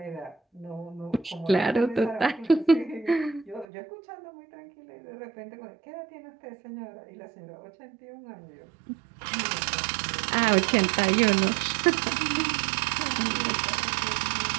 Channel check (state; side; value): drops out; left; at 3.7 s